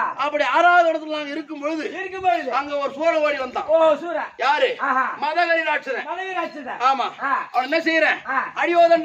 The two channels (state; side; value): identical; both; correlation 1.00